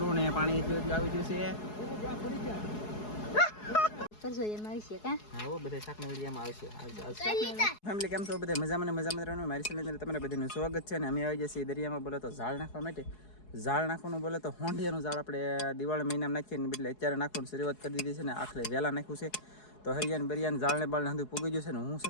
ને પાણી આવી ગયું છે. ફેમિલી કેમ છો બધા? મજામાં રહેવાનું. મારી ચેનલ તમારા બધાનું સ્વાગત છે. અને અમે આવી જઈએ દરિયામાં. બોલો તો ઝાડ નાખવા માટે. ઝાડ નાખવાનું બોલે તો હોંડિયાનું ઝાડ આપણે દિવાળી મહિનામાં નાખીએ ને બદલે અત્યારે નાખવાનું શરૂઆત કરી દીધી છે ને આખરે વહેલા નાખ્યું છે. તો હરિયાને બરિયાને ઝાડને બાળને હંધું પૂગી ગયું છે ને હું છે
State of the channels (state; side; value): late; right; 4.7 ms